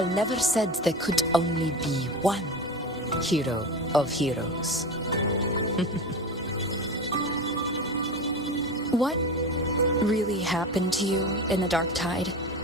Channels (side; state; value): both; normal; correlation 0.27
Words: never said there could only be one hero of heroes. What really happened to you in the dark tide?